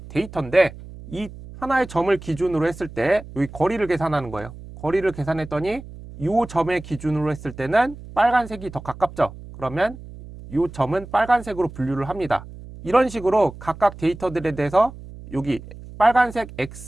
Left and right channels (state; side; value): noise; right; hum, 15 dB below the sound